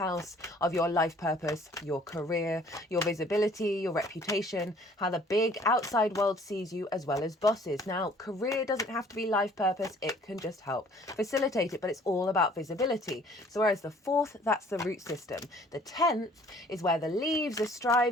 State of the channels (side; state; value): both; normal; correlation 0.56